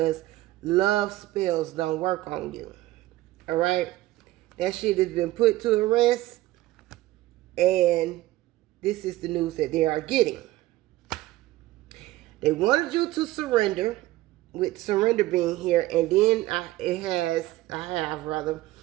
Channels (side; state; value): left; quieter; 16.9 dB